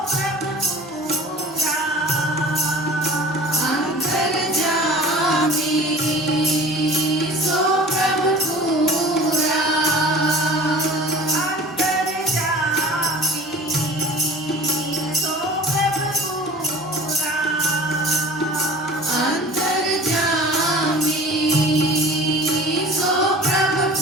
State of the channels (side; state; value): both; normal; correlation 0.43